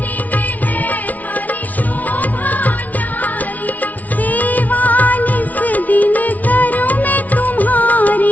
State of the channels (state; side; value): late; right; 0.074 ms